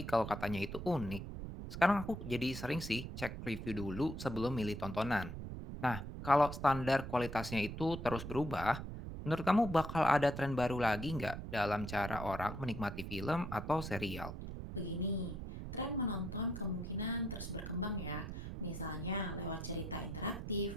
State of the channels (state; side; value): noise; right; rumble, 7 dB below the sound